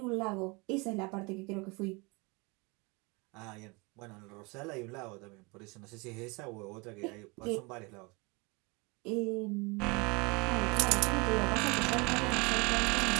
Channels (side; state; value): left; quieter; 28.0 dB